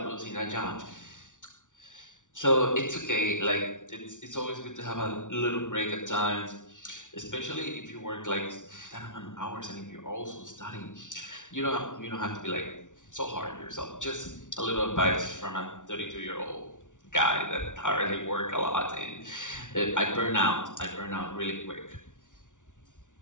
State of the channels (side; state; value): right; late; 0.87 ms